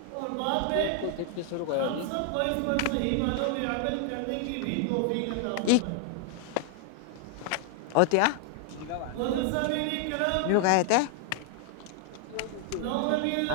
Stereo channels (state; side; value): different; both; correlation 0.00